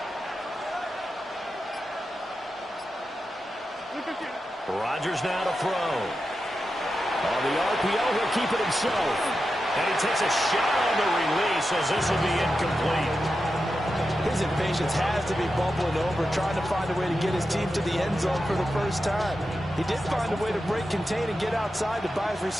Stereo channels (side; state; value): both; normal; correlation 0.90